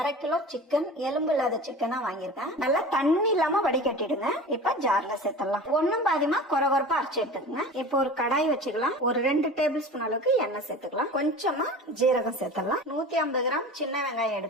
1/2 கிலோ சிக்கன், எலும்பு இல்லாத சிக்கனா வாங்கியிருக்கேன். நல்லா தண்ணி இல்லாம வடிகட்டிடுங்க. இப்ப ஜார்ல சேர்த்துடலாம். ஒண்ணும் பாதியமா கொரகொரப்பா அரைச்சு எடுத்துக்கங்க. இப்போ ஒரு கடாய் வச்சுக்கலாம். ஒரு 2 டேபிள் ஸ்பூன் அளவுக்கு எண்ணெய் சேர்த்துக்கலாம். கொஞ்சமா ஜீரகம் சேர்த்துடலாம். 150 கிராம் சின்ன வெங்காயம்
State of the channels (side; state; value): both; normal; correlation 0.36